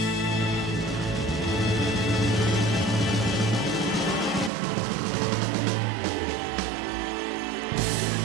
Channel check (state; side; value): drops out; left; at 4.5 s